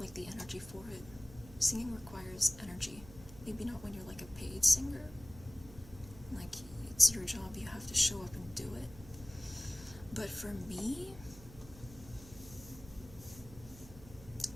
like, the energy for it. Singing requires energy. Maybe not when you're, like, a paid singer. Like, it's your job, you have to show up and do it. But for me,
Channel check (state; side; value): noise; right; hum, 17 dB below the sound